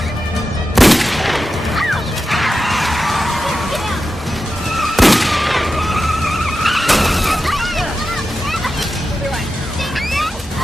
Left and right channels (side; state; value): both; normal; correlation 0.91